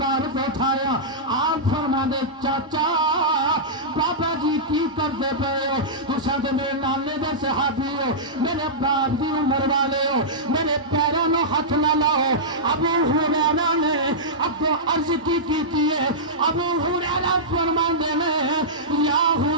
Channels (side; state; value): both; normal; correlation -0.13